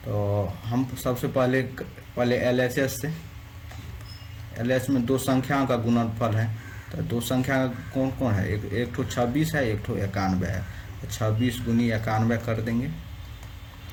तो हम सबसे पहले एलएचएस से, एलएच में 2 संख्याओं का गुणनफल है, तो 2 संख्या कौन कौन है, एक ठो 26 है, एक ठो 91 है, तो 26 गुनी 91 कर देंगे।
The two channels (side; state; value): both; identical; correlation 1.00